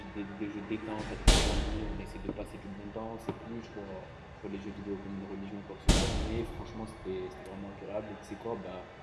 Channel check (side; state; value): both; identical; correlation 1.00